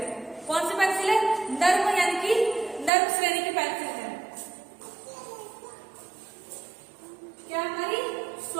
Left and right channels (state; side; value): drops out; left; at 2.9 s